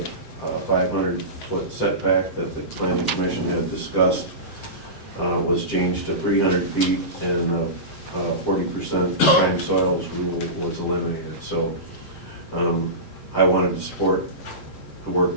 500-foot setback that the planning commission had discussed was changed to 300 feet, and 40% prime soils rule was eliminated. So I wanted to support the work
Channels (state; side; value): late; right; 7.7 ms